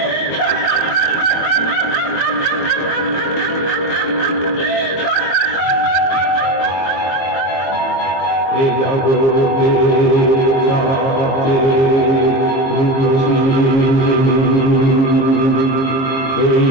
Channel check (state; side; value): late; right; 22 ms